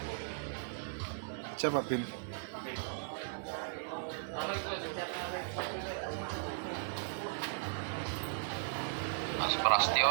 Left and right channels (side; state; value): left; silent; digital silence